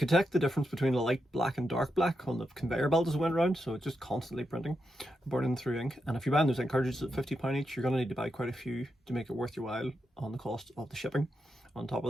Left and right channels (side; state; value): both; normal; correlation 0.85